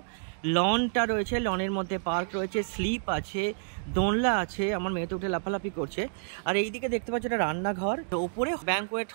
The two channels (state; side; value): silent; left; digital silence